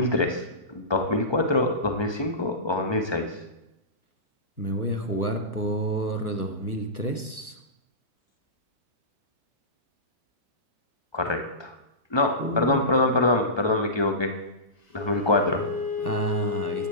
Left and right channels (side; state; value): right; late; 1.3 ms